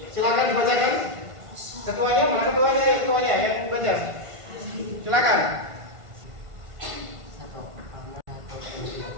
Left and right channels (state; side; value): late; left; 1.5 ms